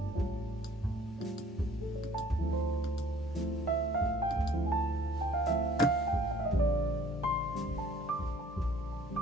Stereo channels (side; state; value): both; normal; correlation 0.55